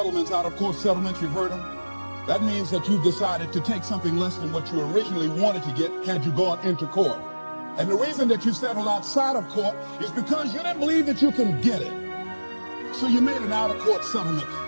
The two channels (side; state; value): both; inverted; correlation -1.00